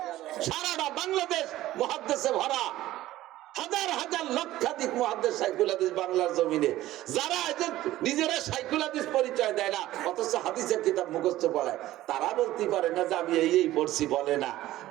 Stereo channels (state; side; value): quieter; left; 15.3 dB